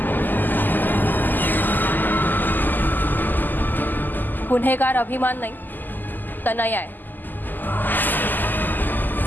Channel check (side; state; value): right; late; 0.088 ms